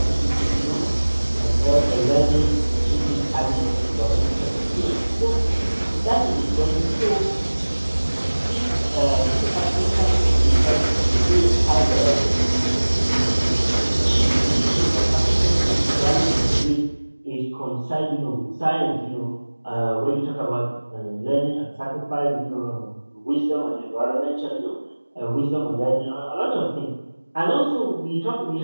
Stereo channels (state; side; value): inverted; both; correlation -1.00